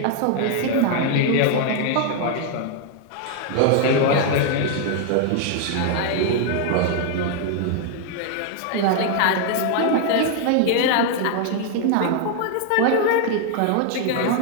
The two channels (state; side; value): different; both; correlation 0.00